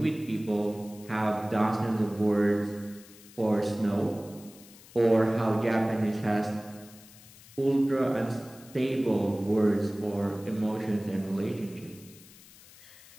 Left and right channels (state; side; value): noise; left; hiss, 22 dB below the sound